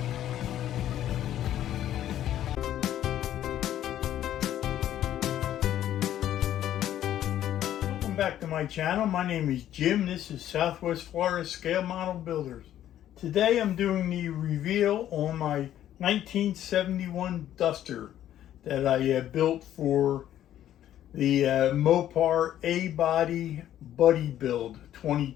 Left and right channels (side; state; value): right; quieter; 11.8 dB